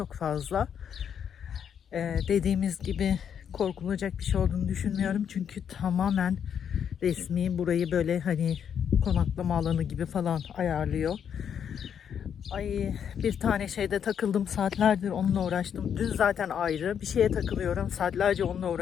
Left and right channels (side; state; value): right; quieter; 8.2 dB